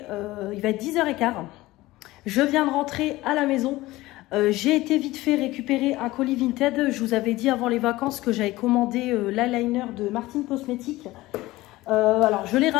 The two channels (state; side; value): quieter; right; 18.4 dB